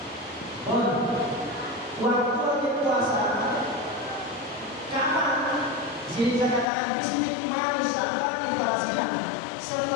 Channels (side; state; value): right; drops out; at 6.7 s